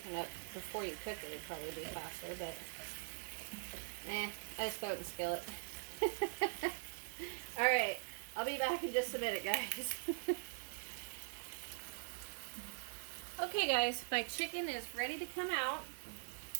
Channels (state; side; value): silent; left; digital silence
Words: up before you cook it, it'd probably be faster, but I just throw it in the skillet. Alright, I'll be back in just a minute, guys. Okay, guys, my chicken is ready to come out.